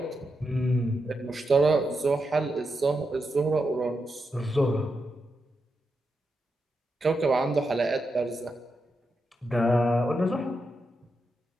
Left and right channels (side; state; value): both; normal; correlation 0.86